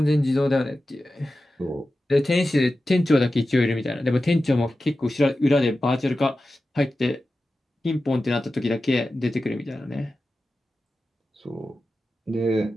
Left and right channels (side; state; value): both; normal; correlation 0.93